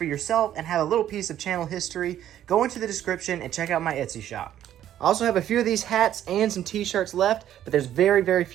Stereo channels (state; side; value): quieter; left; 11.4 dB